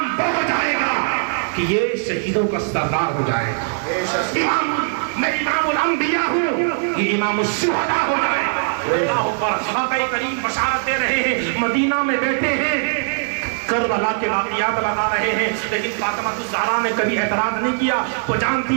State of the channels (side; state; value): left; silent; digital silence